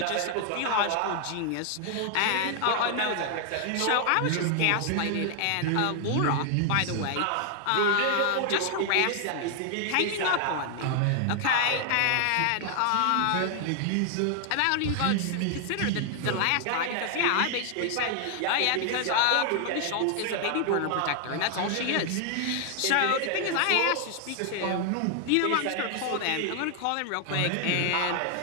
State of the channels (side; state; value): both; different; correlation 0.00